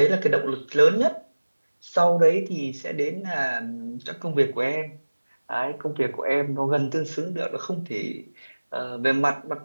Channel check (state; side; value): inverted; both; correlation -1.00